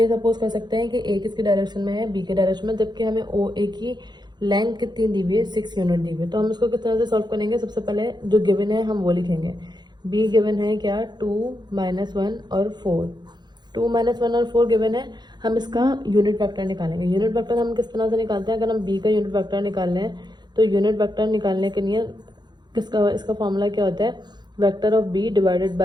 सपोज कर सकते हैं कि ए किसके डायरेक्शन में है, बी के डायरेक्शन में, जबकि हमें ओ ए की लेंथ कितनी दी हुई है, 6 यूनिट दी हुई है। तो हम इसको किस तरह से सॉल्व करेंगे, सबसे पहले जो गिवन है हम वो लिखेंगे। बी गिवन है क्या, 2, -1 और 4। 2, -1 और 4 गिवन है। हम इसका यूनिट वेक्टर निकालेंगे। यूनिट वेक्टर हम किस तरह से निकालते हैं, अगर हम बी का यूनिट वेक्टर निकालना है तो यूनिट वेक्टर निकालने के लिए किसका, इसका फॉर्मूला क्या होता है, vector of B divided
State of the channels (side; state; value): left; late; 0.21 ms